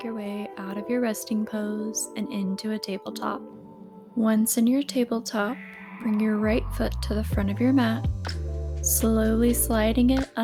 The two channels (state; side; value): identical; both; correlation 1.00